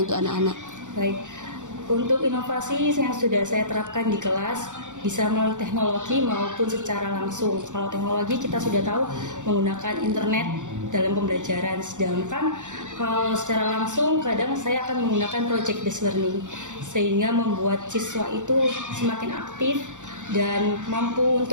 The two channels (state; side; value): late; left; 0.86 ms